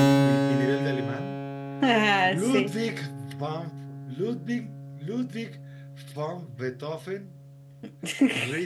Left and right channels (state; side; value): identical; both; correlation 1.00